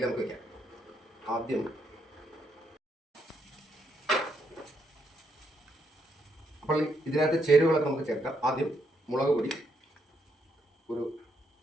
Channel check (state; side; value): normal; both; correlation 0.77